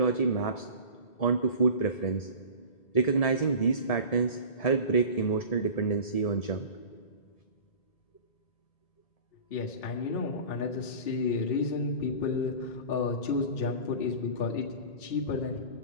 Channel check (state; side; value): late; right; 1.7 ms